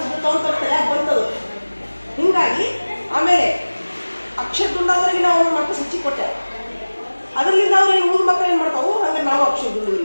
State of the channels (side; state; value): both; inverted; correlation -1.00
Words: ಬರ್ತಾವ ಅಂತ ತಲೆಯಾಗ ಬಂತದು. ಹಿಂಗಾಗಿ ಆಮೇಲೆ ಅಕ್ಷರ ದುಂಡಾದ್ರಿಗೆ ನಾವು ಮಾರ್ಕ್ಸ್ ಹೆಚ್ಚಿಗೆ ಕೊಟ್ಟೆ. ಅದರಿಂದ ಅವ್ರು ಏನು ಮುಂದೆ ಮಕ್ಕಳು ಏನು ಮಾಡ್ತಾವು, ಹಂಗೆ ನಾವು ಅಕ್ಷರ ದುಂಡು